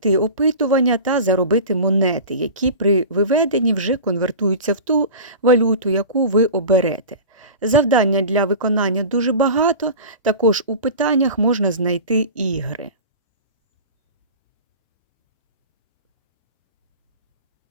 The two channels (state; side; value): inverted; both; correlation -0.33